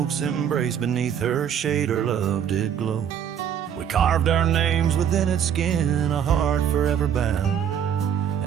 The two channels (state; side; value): quieter; left; 8.7 dB